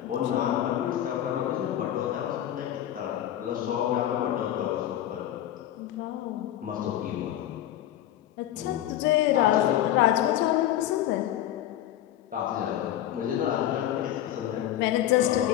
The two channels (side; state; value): right; quieter; 12.2 dB